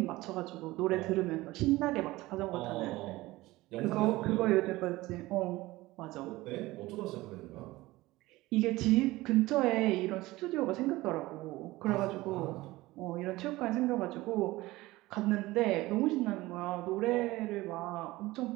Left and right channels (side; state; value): left; quieter; 19.0 dB